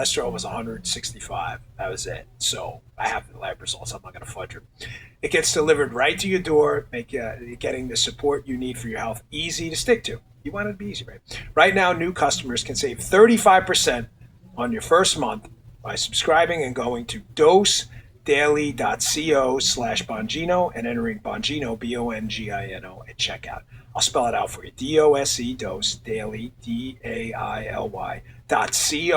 was 165. That was it. So I have the lab results. I'm not going to fudge them. It gets delivered right to your door, getting the support you need for your health easy to stick to. You want it to be easy, right? Right now, new customers can save 35% on your first month by subscribing and going to dosedaily.co/Bongino and entering Bongino, Bongino, at checkout. I'll spell it out for you. DOSE, Dose, Daily,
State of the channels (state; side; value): identical; both; correlation 1.00